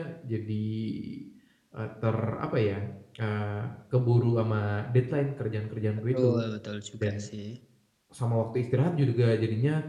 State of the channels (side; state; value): both; identical; correlation 1.00